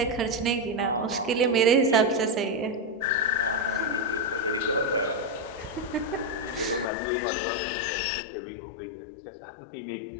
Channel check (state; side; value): drops out; right; at 6.9 s